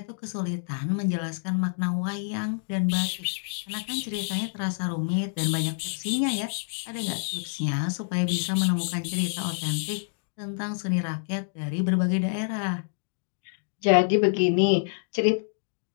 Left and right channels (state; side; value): silent; right; digital silence